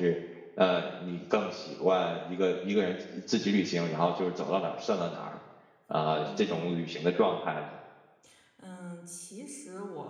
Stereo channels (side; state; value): both; identical; correlation 1.00